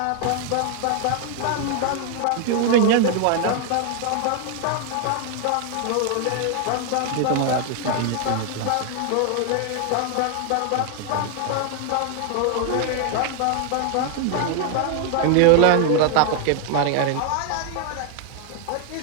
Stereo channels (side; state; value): both; different; correlation 0.00